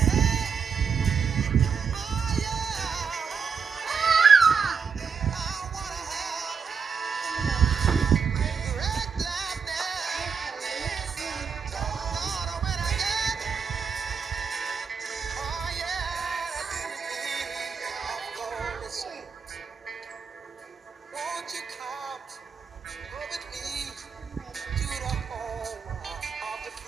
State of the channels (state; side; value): quieter; left; 6.1 dB